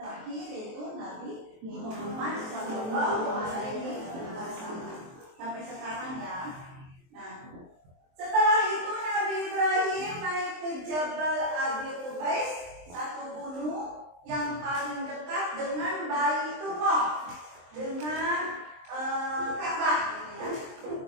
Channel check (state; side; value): late; left; 23 ms